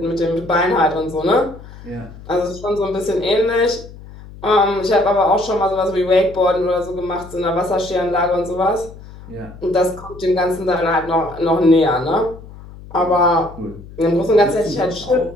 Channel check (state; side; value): noise; left; hum, 17 dB below the sound